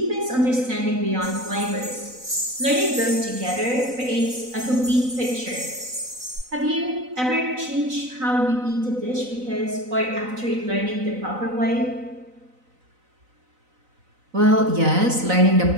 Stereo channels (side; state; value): left; late; 4.0 ms